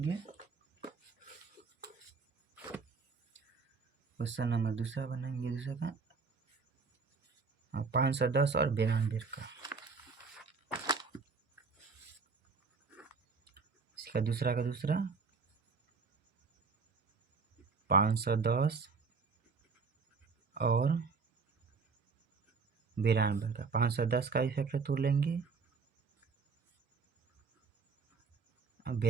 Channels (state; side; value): quieter; left; 4.9 dB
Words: दूसरा का 510 और 92 का। इसका दूसरा 510 और 92 का। 510 का इफेक्ट तोड़ लेंगे और